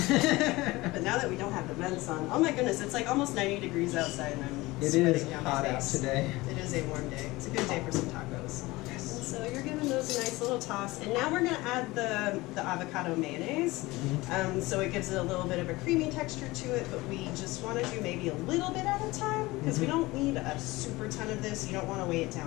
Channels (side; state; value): right; quieter; 20.6 dB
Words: But now that we don't have the vents on, oh my goodness, it's like almost 90 degrees outside, and I'm sweating down my face. It is hot out today. It is a warm day. It's a good day for some tacos. And so you're giving those a nice little toss, and now we're going to add the avocado mayonnaise. So it gives it a little bit of a creamy texture to it, but we just want to do maybe a little bit at a time, because we don't need a super ton of this. You don't want to weigh it